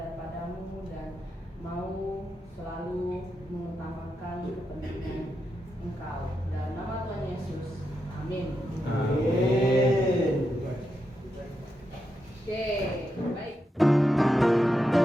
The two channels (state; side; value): normal; both; correlation 0.85